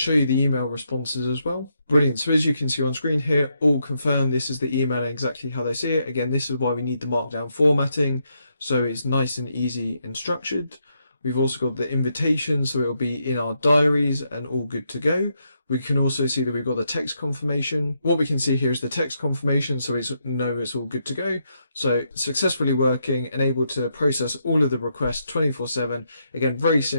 you the email responses as well. Brilliant. So as you can see on screen here, all confirmed. This is the email and exactly how they see it. Again, this is why we need the markdown formatting, so it's nice and easy and structured. We've also got the invitation, so it'll be in our diaries and all good to go. We can also see that we've got the text confirmation. What we can see here is the text confirmation, so we know it's all good to go. So successfully working and able to process all of the requests 24/7. Again, very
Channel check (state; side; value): inverted; both; correlation -0.79